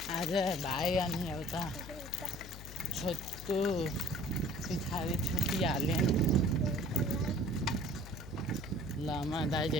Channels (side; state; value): left; noise; hum, 13 dB below the sound